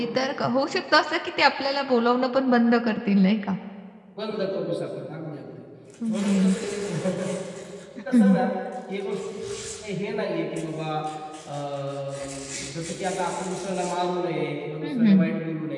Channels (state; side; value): identical; both; correlation 1.00